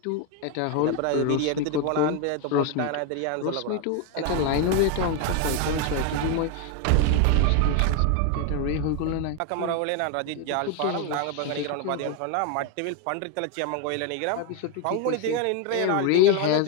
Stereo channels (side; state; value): both; different; correlation 0.01